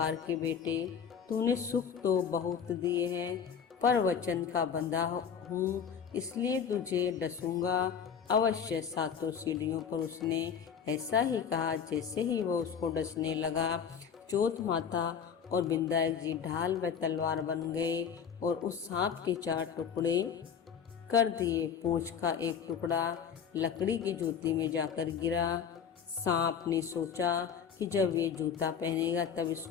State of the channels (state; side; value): quieter; right; 7.2 dB